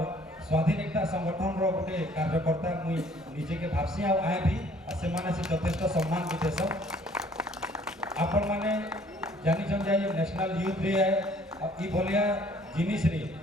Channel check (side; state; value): both; normal; correlation 0.58